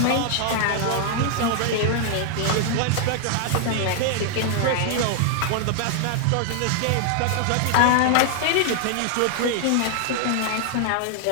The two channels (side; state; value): both; different; correlation 0.00